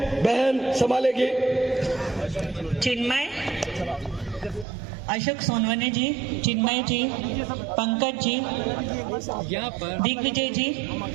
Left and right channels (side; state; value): left; drops out; at 4.7 s